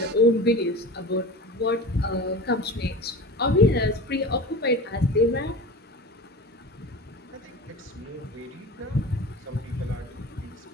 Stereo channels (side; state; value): both; normal; correlation 0.34